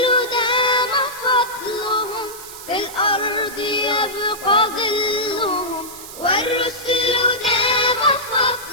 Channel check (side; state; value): right; noise; hiss, 13 dB below the sound